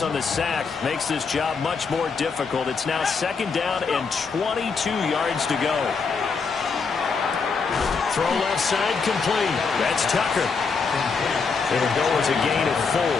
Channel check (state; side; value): quieter; right; 5.1 dB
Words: on the sack makes this job much more difficult. It's now second down and 22 yards to go. Throw left side complete. That's Tucker. It'll go as a gain of 4.